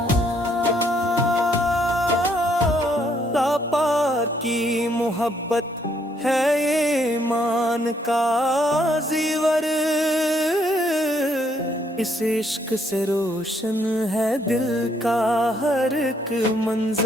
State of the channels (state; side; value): normal; both; correlation 0.70